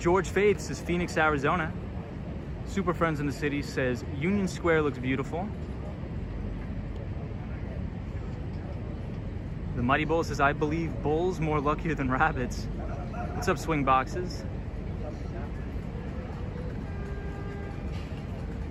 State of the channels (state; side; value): identical; both; correlation 1.00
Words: Faith says Phoenix, Arizona. Super Friends in the City says Union Square looks beautiful. The Mighty Bull says, I believe bulls more luckier than rabbits. What's up, Swing Boxes?